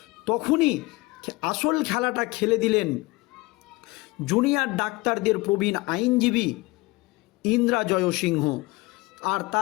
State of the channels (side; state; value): right; quieter; 22.6 dB